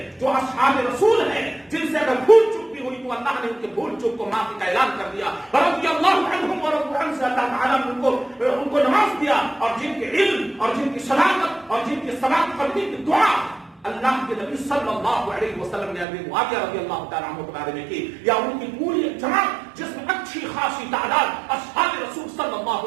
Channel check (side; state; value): left; drops out; at 16.1 s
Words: جو اصحاب رسول ہیں جن سے اگر بھول چک بھی ہوئی تو اللہ نے ان کے بھول چک کو معافی کا اعلان کر دیا، رضی اللہ عنہم ورضوا عنہ سے اللہ تعالیٰ نے ان کو نواز دیا، اور جن کے علم اور جن کی صداقت اور جن کی ثبات قلبی کی دعا اللہ کے نبی صلی اللہ علیہ وسلم نے امیر معاویہ رضی اللہ تعالیٰ عنہ کے بارے میں کی، یا ان کی پوری جماعت جس میں اچھی خاصی تعداد اصحاب رسول صلی